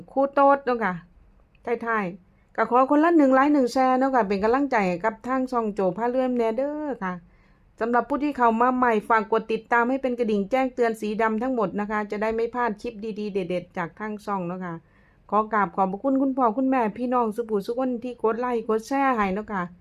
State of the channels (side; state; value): both; identical; correlation 1.00